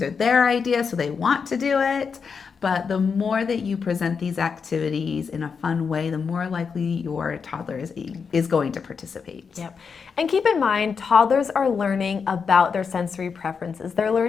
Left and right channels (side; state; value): right; quieter; 5.8 dB